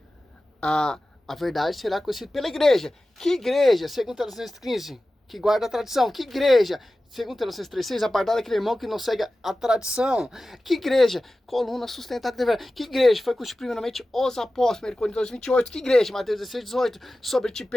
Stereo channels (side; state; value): both; normal; correlation 0.95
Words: A verdade será conhecida pela igreja. Que igreja? Segundo Tessalonicenses 15, que guarda a tradição. Que igreja? Segundo Tessalonicenses 3:6, apartar daquele irmão que não segue a tradição. Que igreja? Coluna sustentada de verdade. Que igreja? Foi constituída primeiramente os apóstolos, 1 Coríntios 2:28. Que igreja? Mateus 16:18. Sobre ti,